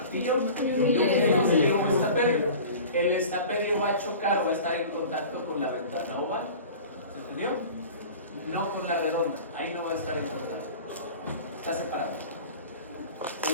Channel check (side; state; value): both; inverted; correlation -0.40